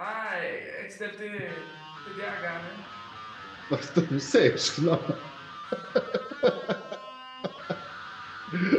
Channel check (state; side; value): identical; both; correlation 1.00